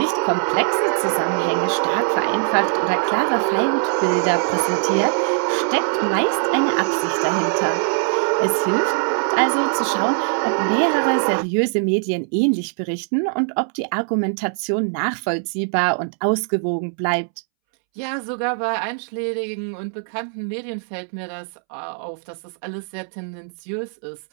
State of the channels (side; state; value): left; silent; 65 dB below the other